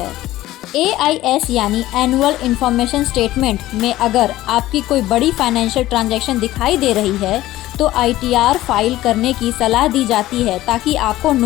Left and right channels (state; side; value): quieter; right; 15.7 dB